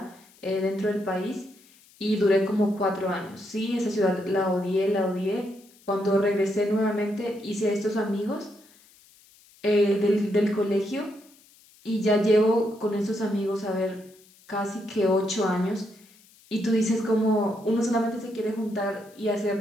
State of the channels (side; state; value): left; noise; hiss, 28 dB below the sound